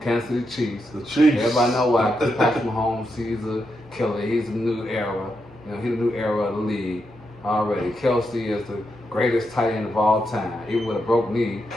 Kansas City Chiefs. The Chiefs. Everybody know why. Because Patrick Mahomes, he's a killer. He's a new era. He's a new era of the league already. Kelsey is the greatest tight end of all time. Even with a broke knee,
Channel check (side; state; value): both; normal; correlation 0.84